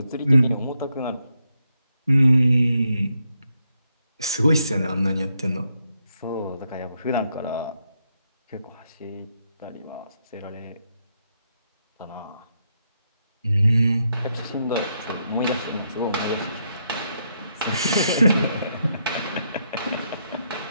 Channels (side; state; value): both; inverted; correlation -0.80